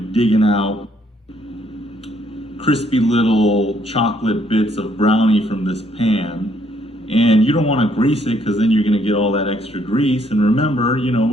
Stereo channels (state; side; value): normal; both; correlation 0.68